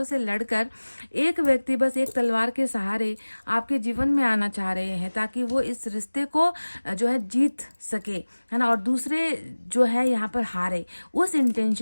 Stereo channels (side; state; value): both; inverted; correlation -1.00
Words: से लड़कर एक व्यक्ति बस एक तलवार के सहारे आपके जीवन में आना चाह रहे हैं, ताकि वो इस रिश्ते को जो है जीत सके, है ना, और दूसरे जो है यहाँ पर हारे। उस